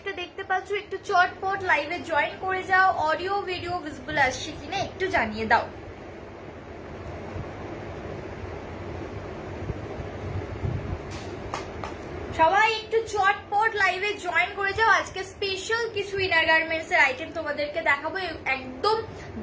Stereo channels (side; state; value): both; identical; correlation 1.00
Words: দেখতে পাচ্ছ একটু চটপট লাইভে জয়েন করে যাও। অডিও ভিডিও ভিজিবল আসছে কিনা একটু জানিয়ে দাও। সবাই একটু চটপট লাইভে জয়েন করে যাও। আজকে স্পেশাল কিছু ইনার গার্মেন্টস এর আইটেম তোমাদেরকে দেখাবো। একদম